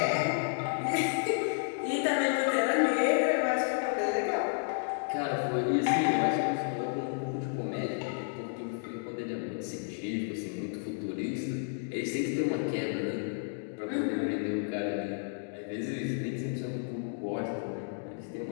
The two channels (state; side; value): silent; right; digital silence